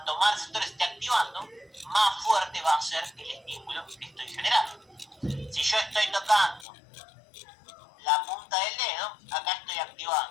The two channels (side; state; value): right; drops out; at 6.7 s